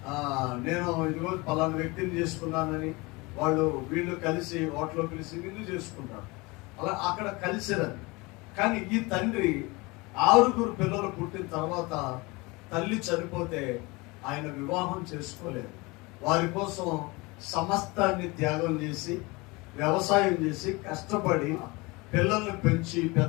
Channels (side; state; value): right; quieter; 24.7 dB